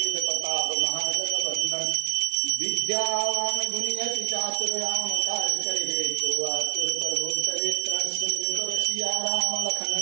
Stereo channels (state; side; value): silent; left; 57 dB below the other